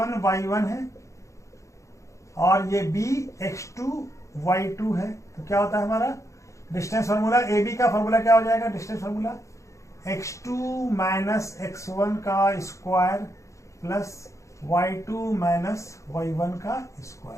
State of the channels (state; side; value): late; right; 0.15 ms